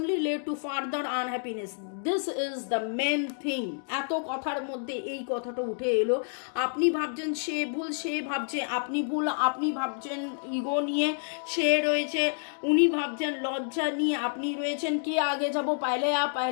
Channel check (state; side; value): silent; right; 59 dB below the other